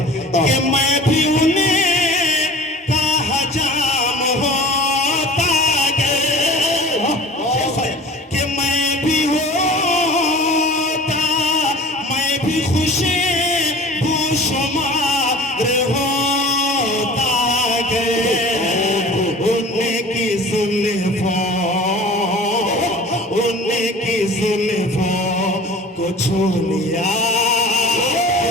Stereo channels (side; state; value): both; normal; correlation 0.41